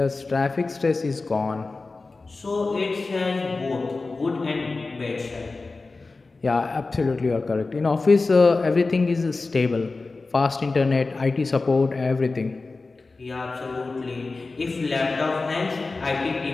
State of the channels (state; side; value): quieter; right; 3.7 dB